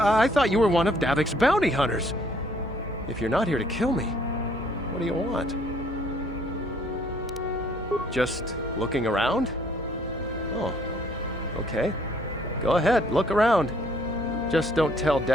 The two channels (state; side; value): normal; both; correlation 0.62